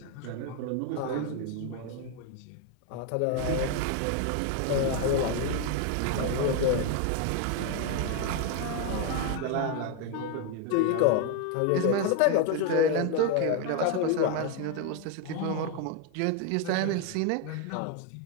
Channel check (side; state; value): both; different; correlation 0.01